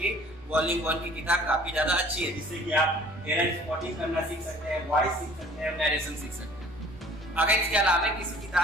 वॉल्यूम 1 की किताब काफी ज्यादा अच्छी है, जिससे कि आप एरर स्पॉटिंग करना सीख सकते हैं, वॉइस सीख सकते हैं, नरेशन सीख सकते हैं। अगर इसके अलावा किसी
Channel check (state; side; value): normal; both; correlation 0.51